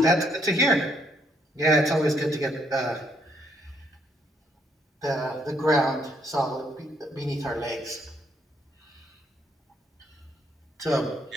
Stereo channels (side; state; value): both; normal; correlation 0.71